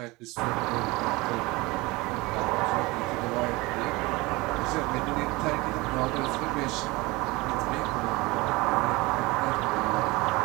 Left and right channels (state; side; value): quieter; left; 22.8 dB